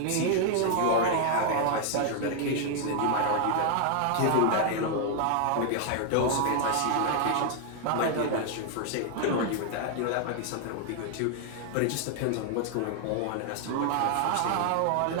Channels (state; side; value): different; both; correlation 0.00